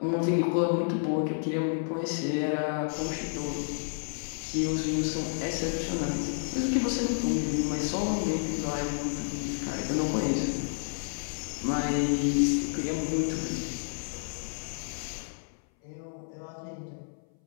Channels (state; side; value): silent; right; 57 dB below the other